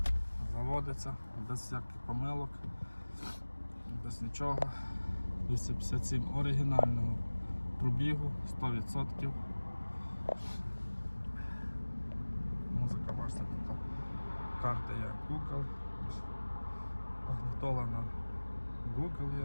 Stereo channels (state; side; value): inverted; both; correlation -1.00